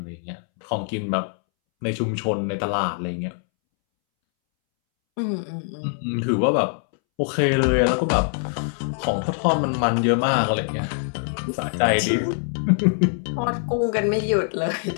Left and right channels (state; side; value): silent; right; 63 dB below the other